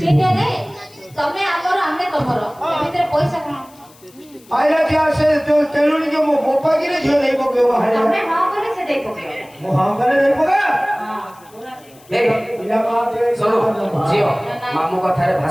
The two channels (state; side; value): noise; left; hiss, 27 dB below the sound